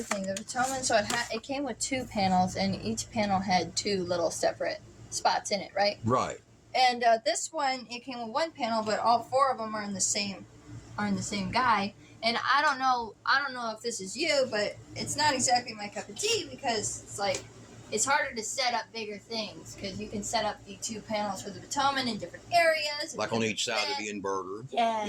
thing, the Potomac, so it came with 2 panels, and each panel had 2 little separate spots in it, right? Right. And this one, it came with 1 panel, but all 4 of them are in the same guy. And I don't know if this is you, but it's not exactly my cup of tea because it's like it's harder to set up bigger things because you can set up the 2 panels for the Potomac in different areas. Like on each side of the inverter. Yeah.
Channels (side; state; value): both; identical; correlation 1.00